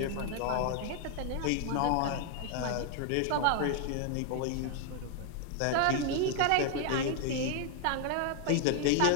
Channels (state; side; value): different; both; correlation 0.00